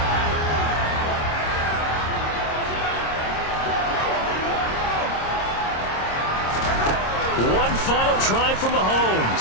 One final try from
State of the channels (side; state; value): right; late; 26 ms